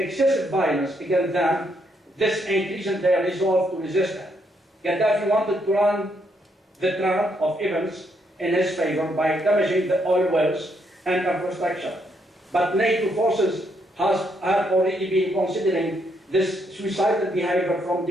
violence against them, this increased their resolve to resist him. Qadhafi wanted to run the trend of events in his favor by damaging the oil wells and infrastructure. But NATO forces have already been considering this suicidal behavior from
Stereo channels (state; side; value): normal; both; correlation 0.75